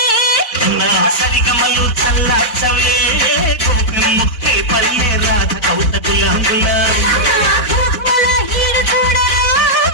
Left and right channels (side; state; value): right; late; 4.0 ms